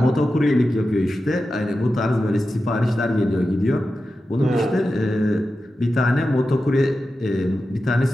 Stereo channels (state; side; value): normal; both; correlation 0.92